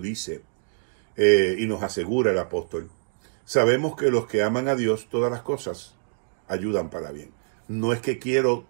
y nos asegura el apóstol, sabemos que los que aman a Dios todas las cosas ayudan para bien. No es que quiero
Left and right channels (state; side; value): silent; left; digital silence